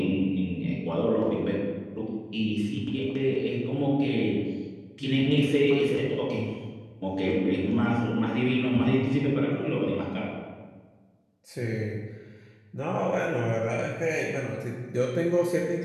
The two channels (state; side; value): identical; both; correlation 1.00